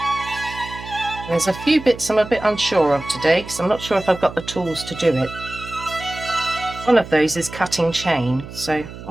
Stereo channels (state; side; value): noise; right; hum, 13 dB below the sound